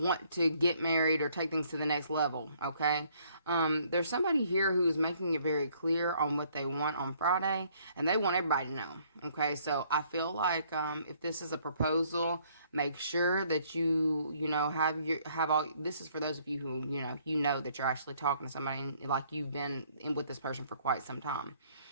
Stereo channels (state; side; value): inverted; both; correlation -0.64